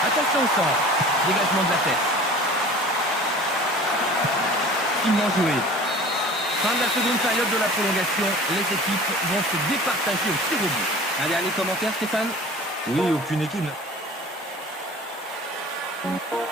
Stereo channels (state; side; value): normal; both; correlation 0.43